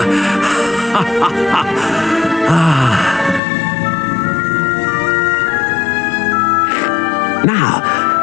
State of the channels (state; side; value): drops out; right; at 3.4 s